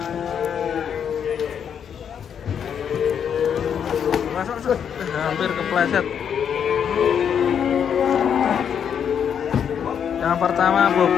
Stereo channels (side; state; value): right; quieter; 8.0 dB